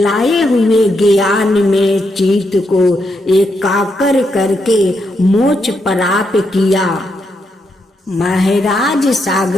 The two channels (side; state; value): both; normal; correlation 0.80